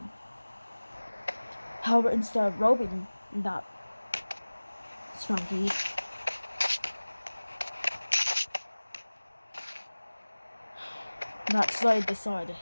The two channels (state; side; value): inverted; both; correlation -1.00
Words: However, instead of robbing that Sprunki, that slave decided to